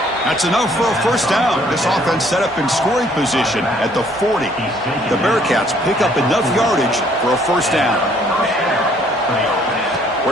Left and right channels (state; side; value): normal; both; correlation 0.62